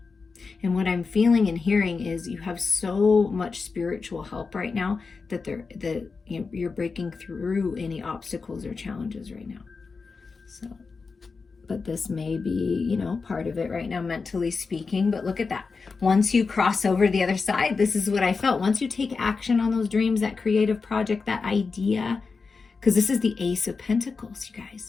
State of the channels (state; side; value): quieter; right; 4.6 dB